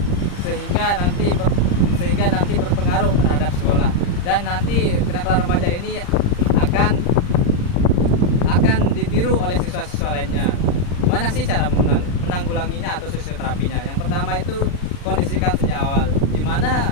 sehingga nanti berpengaruh terhadap sekolah, dan nanti kenakalan remaja ini akan ditiru oleh siswa-siswa lainnya. Mana sih cara menanggulanginya atau sosioterapinya? Yang pertama itu kondisikan sejak awal, di mana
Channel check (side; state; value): right; late; 40 ms